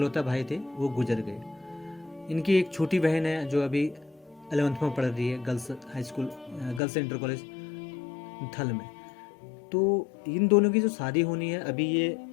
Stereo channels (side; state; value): right; drops out; at 6.8 s